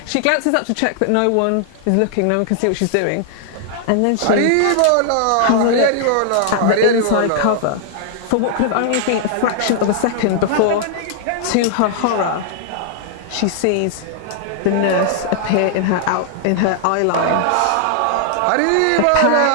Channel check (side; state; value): both; different; correlation -0.01